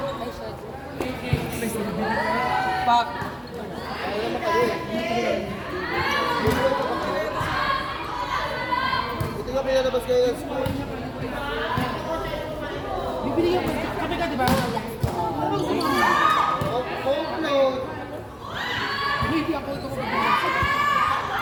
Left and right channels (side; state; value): both; identical; correlation 1.00